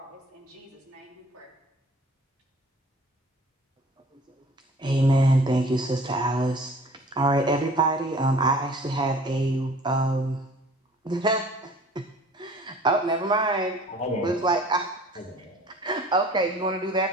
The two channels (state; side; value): normal; both; correlation 0.49